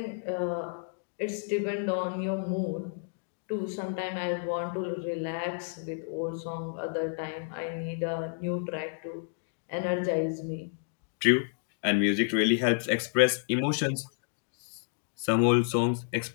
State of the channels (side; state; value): right; silent; digital silence